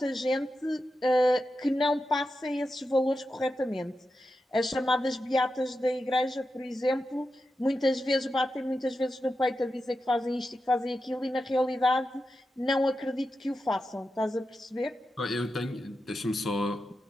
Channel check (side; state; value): both; normal; correlation 0.90